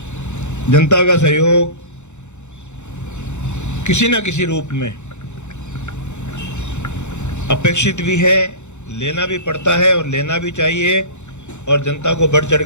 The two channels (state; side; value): late; right; 0.83 ms